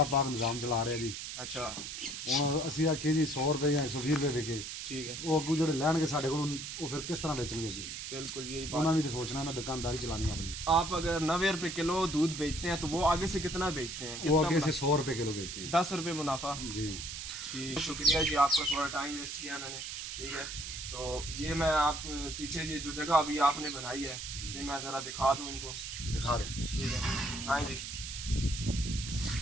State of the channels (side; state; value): right; noise; hiss, 7 dB below the sound